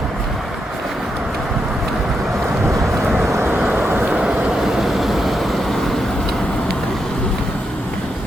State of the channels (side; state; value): both; normal; correlation 0.83